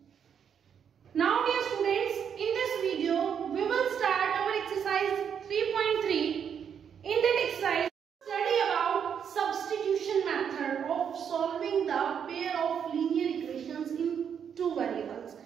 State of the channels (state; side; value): quieter; left; 7.8 dB